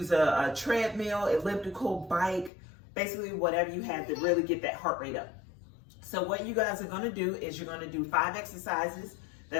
a treadmill, elliptical, bike, basically whatever you have to really get that heart rate up. So what you guys are going to do is you're going to do 5 exercises.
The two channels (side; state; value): right; drops out; at 2.5 s